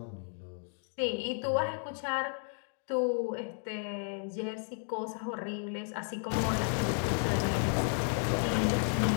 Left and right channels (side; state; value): right; silent; 56 dB below the other